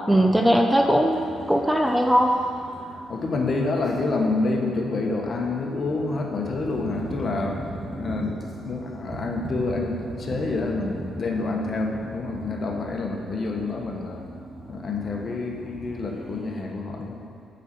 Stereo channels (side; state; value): both; normal; correlation 0.84